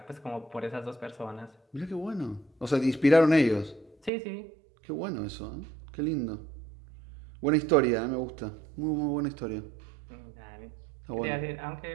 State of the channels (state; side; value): drops out; left; at 4.1 s